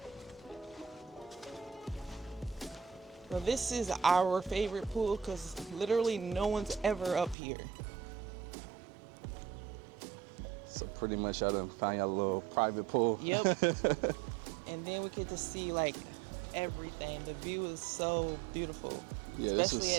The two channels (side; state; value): left; drops out; at 7.4 s